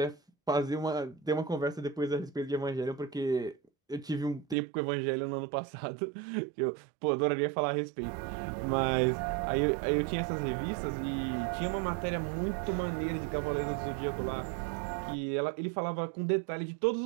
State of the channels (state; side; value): drops out; left; at 4.5 s